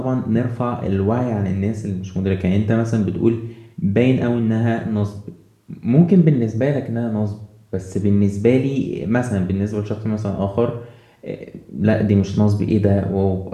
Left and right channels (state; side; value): identical; both; correlation 1.00